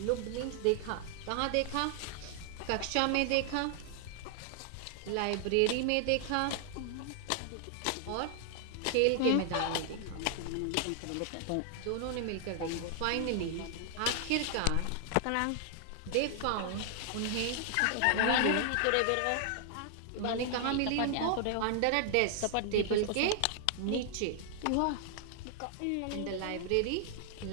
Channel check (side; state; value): both; different; correlation 0.00